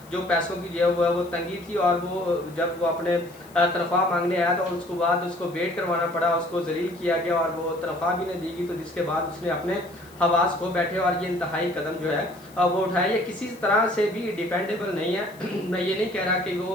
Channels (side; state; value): left; noise; hiss, 25 dB below the sound